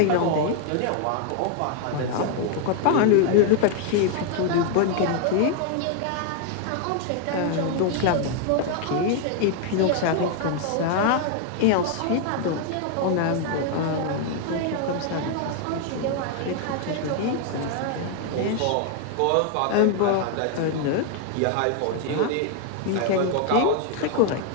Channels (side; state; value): both; different; correlation 0.00